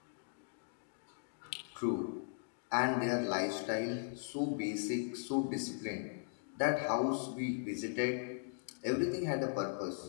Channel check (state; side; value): silent; right; digital silence